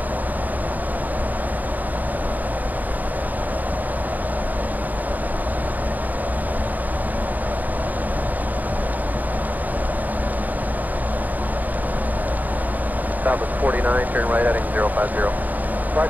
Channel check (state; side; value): late; left; 0.082 ms